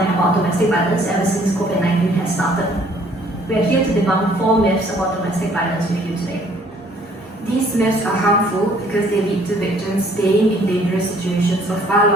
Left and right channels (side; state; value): both; normal; correlation 0.60